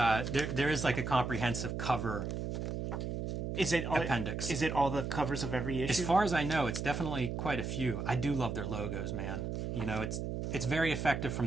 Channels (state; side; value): noise; right; hum, 3 dB below the sound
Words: is like a comprehensive cover. Is it appendix? Is it all the covers of every issue? As far as I know, it's definitely quite a few. I do love their logos, man. It's very effective